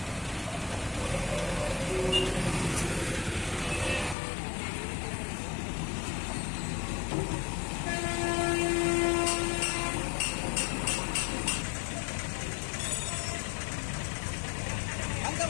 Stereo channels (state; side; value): drops out; right; at 4.2 s